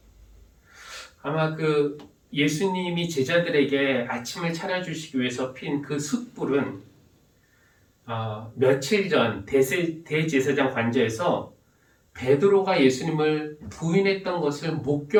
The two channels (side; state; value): both; identical; correlation 1.00